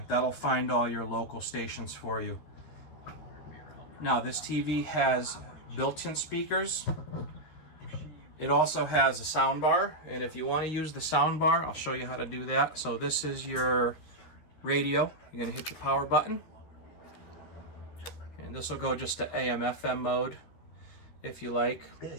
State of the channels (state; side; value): late; right; 13 ms